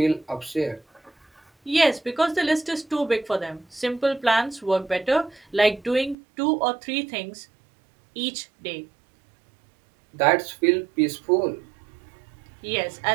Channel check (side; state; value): left; drops out; at 6.2 s